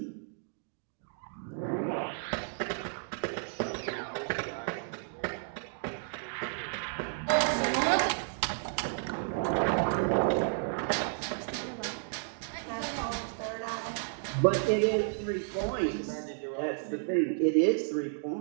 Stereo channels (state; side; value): silent; left; digital silence